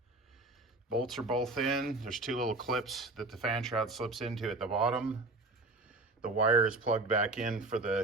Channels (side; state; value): left; quieter; 3.1 dB